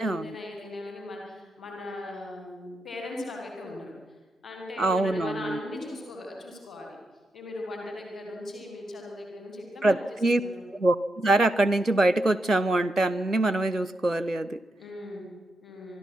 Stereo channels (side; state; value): both; normal; correlation 0.84